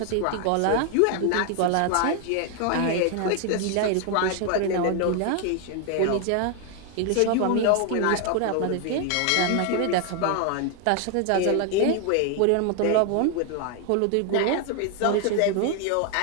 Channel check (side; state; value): both; different; correlation 0.01